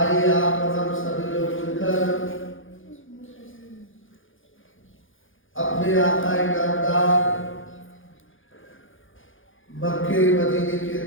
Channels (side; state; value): right; late; 0.58 ms